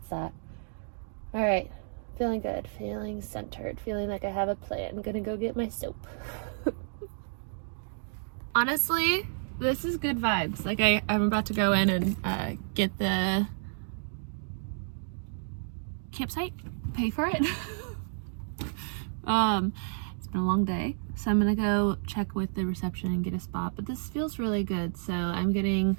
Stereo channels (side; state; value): left; silent; digital silence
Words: that. All right. Feeling good, feeling centered, feeling like I have a plan. I'm gonna go get my soap. Honestly, this is good vibes. Like I'm about to go in and get the campsite, pay for it. It's been a long day, so I'm gonna go check with the reception and get a spot, but this feels really good, so I'm getting